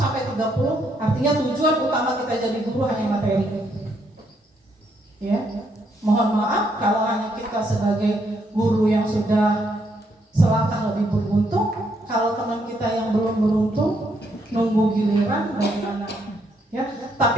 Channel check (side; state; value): both; normal; correlation 0.74